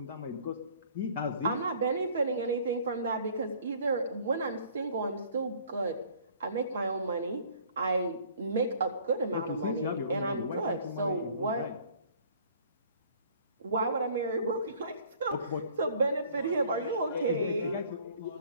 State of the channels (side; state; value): both; inverted; correlation -0.54